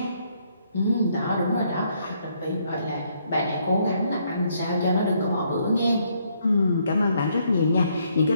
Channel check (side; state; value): both; inverted; correlation -0.71